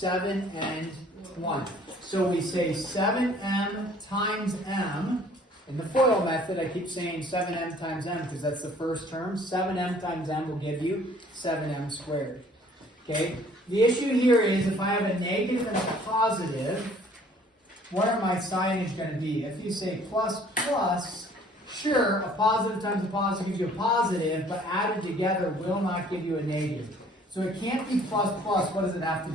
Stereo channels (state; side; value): normal; both; correlation 0.56